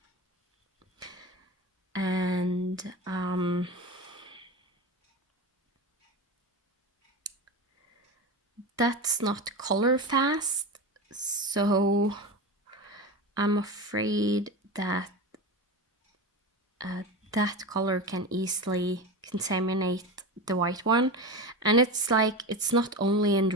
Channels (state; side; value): normal; both; correlation 0.24